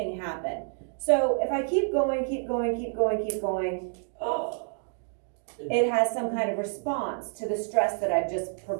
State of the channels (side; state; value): left; silent; 59 dB below the other